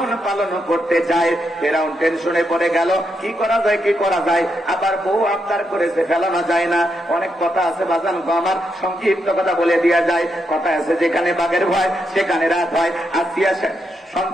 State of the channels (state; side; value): normal; both; correlation 0.82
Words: পালন করতে চাই। ফেরাউন টেনশনে পড়ে গেল, কি করা যায়, কি করা যায়। আবার বউ আবদার করেছে, ফেলানো যায় না। অনেক কথা আছে বাজান গো আমার, সংক্ষিপ্ত কথা বলে দেওয়া যায়। কথা আছে, যেখানে বাঘের ভয় সেখানে রাত হয়। আসিয়া